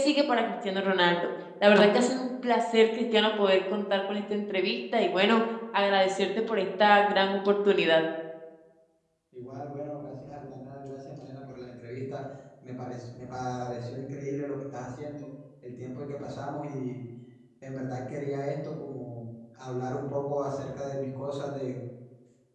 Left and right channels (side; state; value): both; identical; correlation 1.00